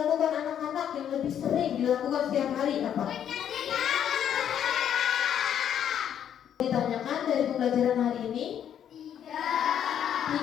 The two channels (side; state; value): right; quieter; 9.5 dB